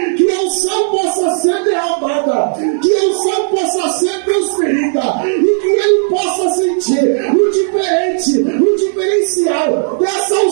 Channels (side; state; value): left; silent; digital silence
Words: que a unção possa ser derramada, que a unção possa ser transferida e que ele possa sentir o diferente, o diferencial dessa